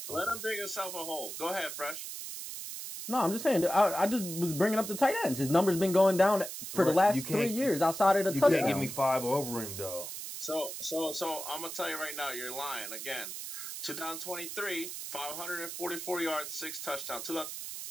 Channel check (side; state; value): right; noise; hiss, 8 dB below the sound